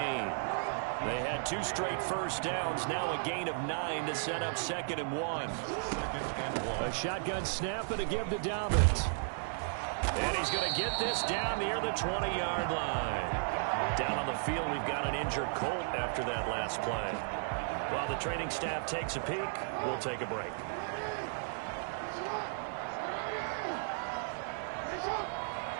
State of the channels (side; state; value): left; silent; 55 dB below the other